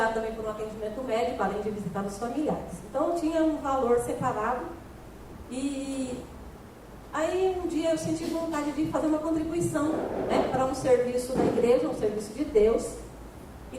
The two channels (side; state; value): both; identical; correlation 1.00